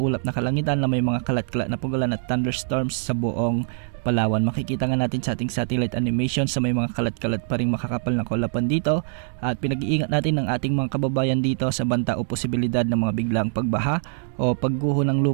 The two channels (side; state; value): left; silent; digital silence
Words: na kalangitan na may mga kalat-kalat na pagulan at thunderstorms sa buong Palawan. Makikita nga natin sa ating satellite animation sa may mga kalat-kalat pa rin makakapal na kaulapan dito at pinag-iingat natin ng ating mga kababayan dito sa banta o posibilidad ng mga biglang pagbaha o pagguho ng